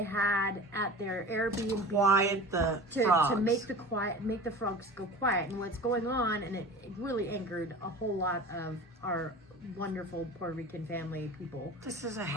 had at their Airbnb to make the frogs go quiet. And what's going on, and it really angered a whole lot of our wonderful Puerto Rican family people. This is a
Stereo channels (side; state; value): both; normal; correlation 0.36